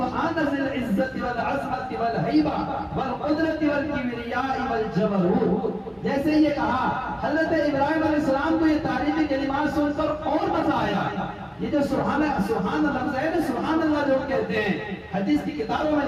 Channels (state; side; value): identical; both; correlation 1.00